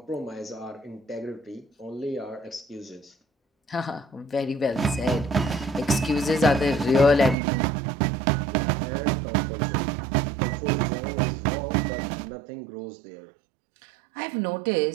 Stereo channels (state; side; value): drops out; left; at 7.4 s